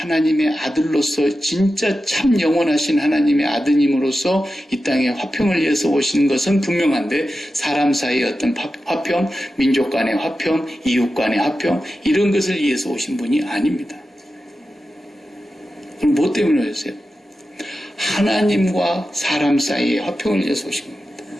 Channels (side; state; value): both; normal; correlation 0.92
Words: 아들로서 진짜 참 영원하신 하나님의 아드님으로서 이 땅에 화평을 위해서 오신 것은 분명한데 사람 사이의 어떤 화평, 민족 간의 화평, 이웃 간의 화평 이런 것을 위해서 오신 분이 아닙니다. 그럼 뭐 때문에 오셨어요? 하나님과 사람 사이의 화평을 위해서 오신 겁니다.